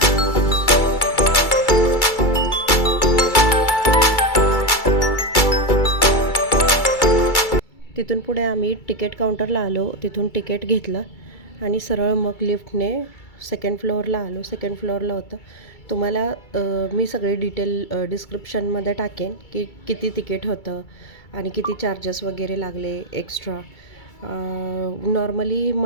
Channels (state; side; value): late; right; 2.3 ms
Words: तिथून पुढे आम्ही तिकीट काउंटरला आलो. तिथून तिकीट घेतलं आणि सरळ मग लिफ्टने सेकंड फ्लोअरला आलो. सेकंड फ्लोअरला होतं. तुम्हाला मी सगळे डिटेल डिस्क्रिप्शनमध्ये टाकेन की किती तिकीट होतं आणि किती चार्जेस वगैरे लागले extra. Normally